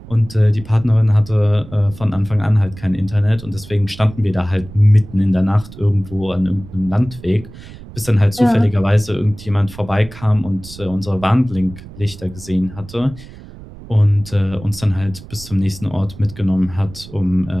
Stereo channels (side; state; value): right; noise; rumble, 16 dB below the sound